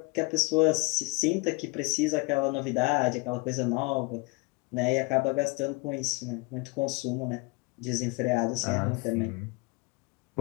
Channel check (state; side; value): quieter; right; 26.9 dB